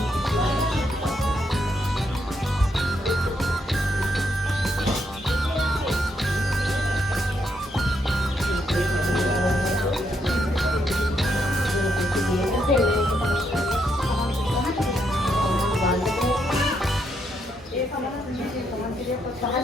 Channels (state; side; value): normal; both; correlation 0.77